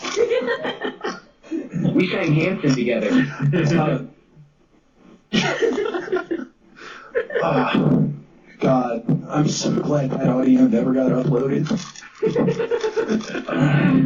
We sang Hanson together. God, I'm so glad that audio never got uploaded.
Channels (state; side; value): identical; both; correlation 1.00